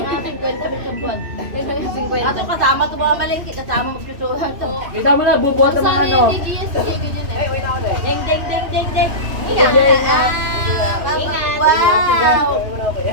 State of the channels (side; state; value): left; late; 3.0 ms